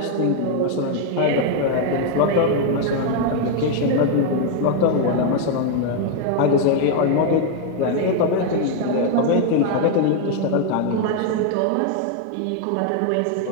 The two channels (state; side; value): different; both; correlation 0.00